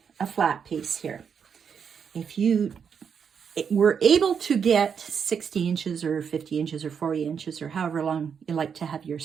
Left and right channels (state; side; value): quieter; left; 7.0 dB